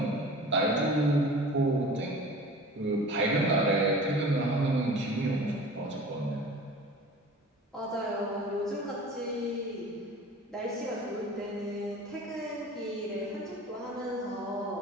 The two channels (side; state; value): both; normal; correlation 0.41